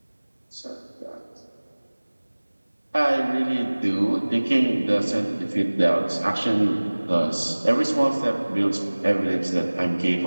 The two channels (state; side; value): inverted; both; correlation -1.00